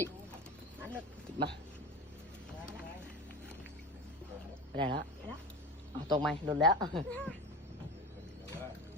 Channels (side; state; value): both; normal; correlation 0.28